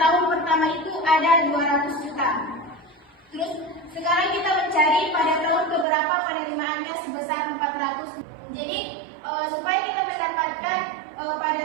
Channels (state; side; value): drops out; left; at 5.9 s